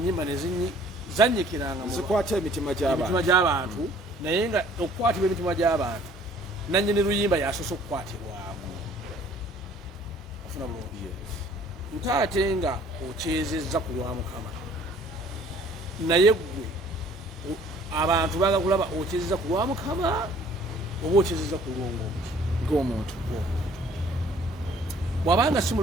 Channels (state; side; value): normal; both; correlation 0.56